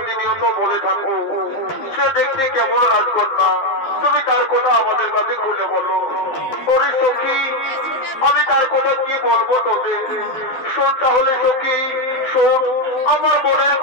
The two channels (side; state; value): right; late; 12 ms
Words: বলে থাকো সে দেখতে কেমন রাজকন্যা, তুমি তার কথা আমাদের কাছে খুলে বলো। ওরে সখী, আমি তার কথা কি বলবো তোদের, শোন তাহলে সখী শোন, আমার মনের